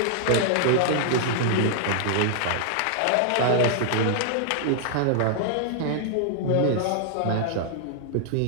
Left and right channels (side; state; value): both; different; correlation -0.01